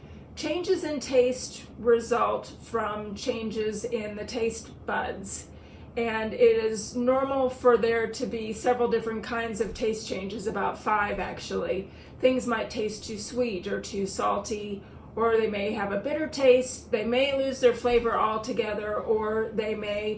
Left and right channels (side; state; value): both; identical; correlation 1.00